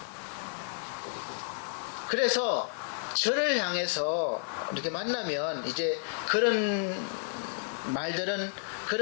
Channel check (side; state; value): right; silent; 57 dB below the other